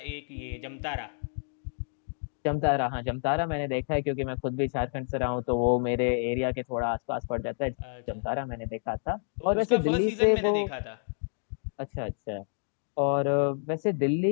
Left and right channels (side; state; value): right; silent; digital silence